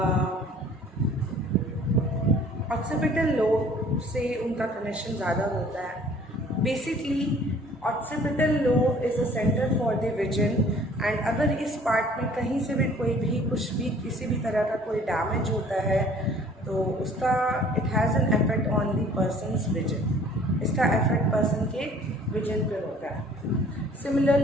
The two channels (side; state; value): both; normal; correlation 0.53